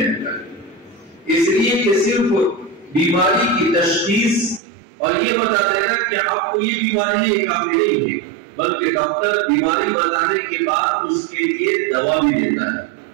کریں۔ اس لیے کہ صرف بیماری کی تشخیص اور یہ بتا دینا کہ آپ کو یہ بیماری ہے کافی نہیں ہے، بلکہ ڈاکٹر بیماری بتانے کے بعد اس کے لیے دوا بھی دیتا ہے،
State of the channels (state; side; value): drops out; left; at 4.6 s